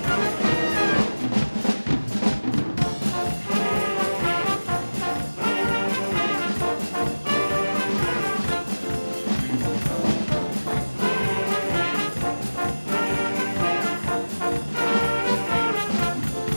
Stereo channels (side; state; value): both; inverted; correlation -1.00